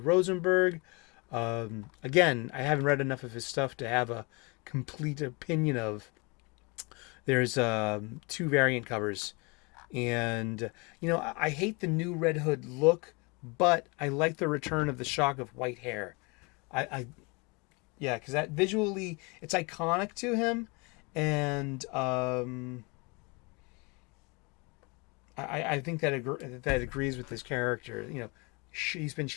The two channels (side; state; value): right; quieter; 29.1 dB